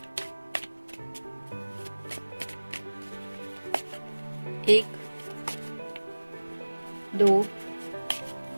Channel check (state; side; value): inverted; both; correlation -1.00